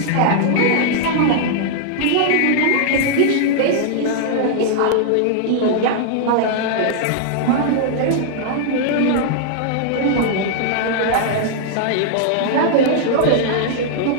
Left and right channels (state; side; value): different; both; correlation -0.01